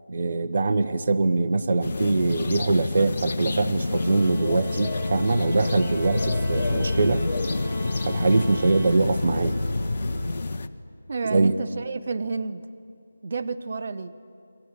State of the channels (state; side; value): inverted; both; correlation -0.92